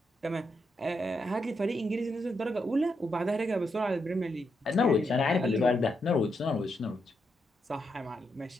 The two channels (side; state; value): both; normal; correlation 0.82